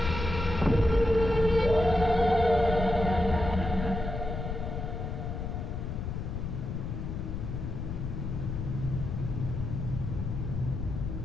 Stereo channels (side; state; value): left; noise; rumble, 4 dB below the sound